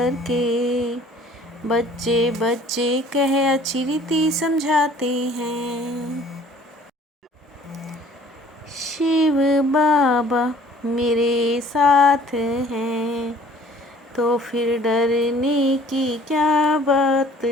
के बच्चे बच्चे कह अच्छी रीति समझाते हैं। शिव बाबा मेरे साथ हैं तो फिर डरने की क्या बात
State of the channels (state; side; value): normal; both; correlation 0.53